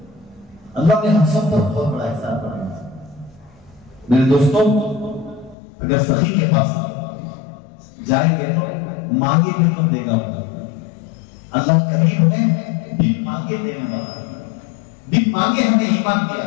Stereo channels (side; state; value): right; drops out; at 5.6 s